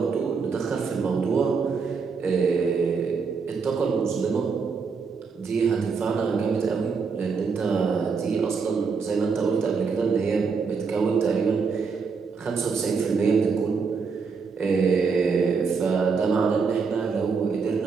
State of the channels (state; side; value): quieter; left; 5.3 dB